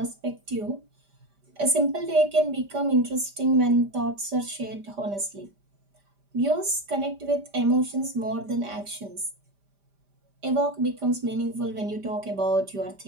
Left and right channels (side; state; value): left; late; 5.0 ms